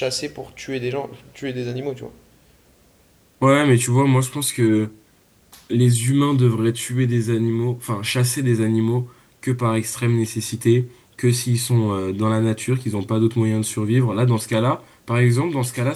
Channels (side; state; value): both; identical; correlation 1.00